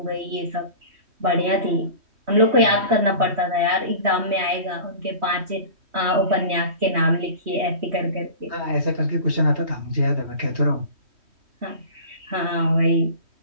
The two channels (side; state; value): left; late; 3.1 ms